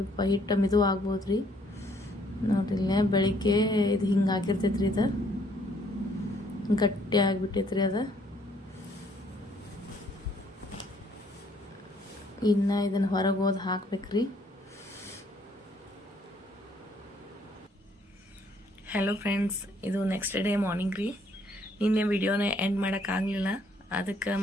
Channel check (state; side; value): normal; both; correlation 0.66